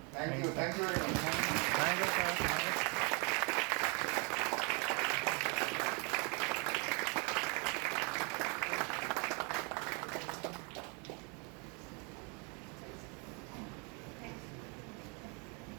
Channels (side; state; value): left; quieter; 33.8 dB